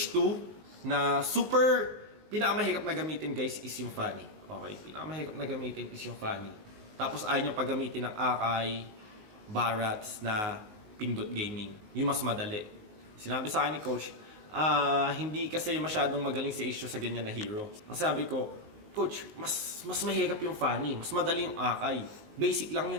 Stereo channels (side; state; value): left; late; 19 ms